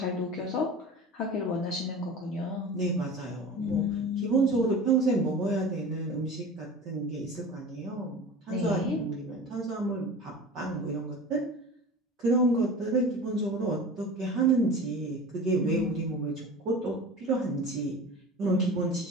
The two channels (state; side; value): normal; both; correlation 0.35